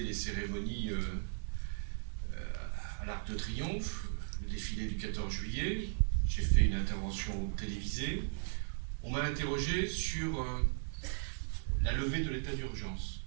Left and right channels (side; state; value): left; silent; digital silence